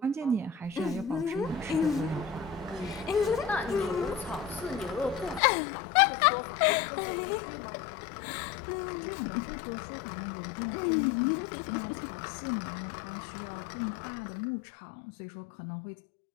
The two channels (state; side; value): drops out; right; at 5.4 s